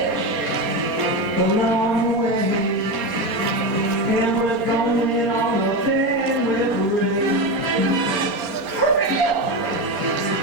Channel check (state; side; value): late; left; 4.3 ms